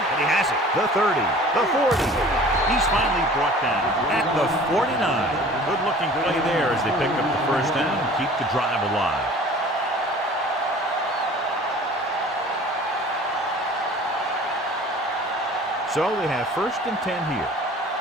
he has it. The 30, the 40. He's finally brought down at the 49. Good-looking play there as they pick up the first down and keep the drive alive. So they have 1st and 10 here.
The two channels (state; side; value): normal; both; correlation 0.46